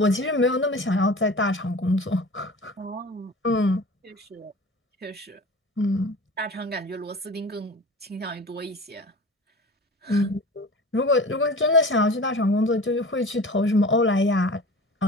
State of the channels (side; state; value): both; normal; correlation 0.37